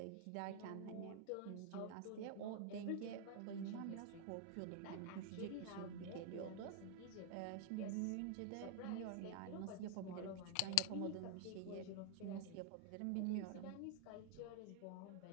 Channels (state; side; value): different; both; correlation 0.00